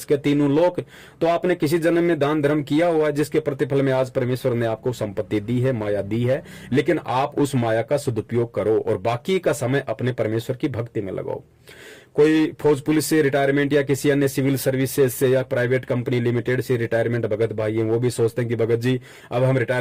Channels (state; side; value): identical; both; correlation 1.00